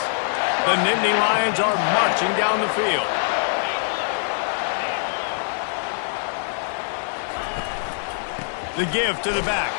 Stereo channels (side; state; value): right; silent; digital silence